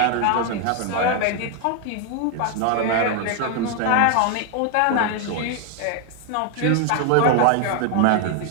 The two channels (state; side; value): different; both; correlation 0.01